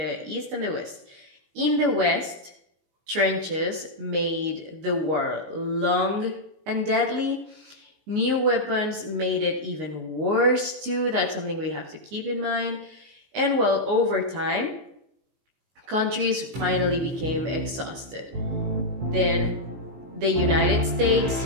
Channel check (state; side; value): late; left; 19 ms